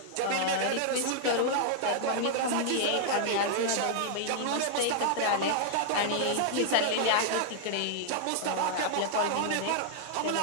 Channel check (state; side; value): different; both; correlation -0.01